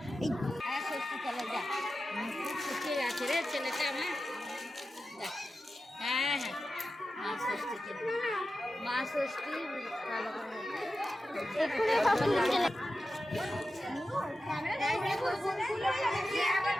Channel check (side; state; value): both; normal; correlation 0.92